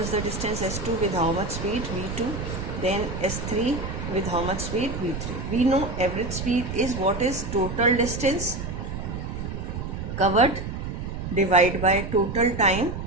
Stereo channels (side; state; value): right; noise; rumble, 6 dB below the sound